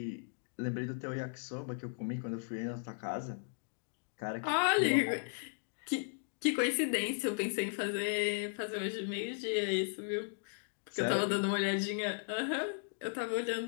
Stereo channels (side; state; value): right; silent; digital silence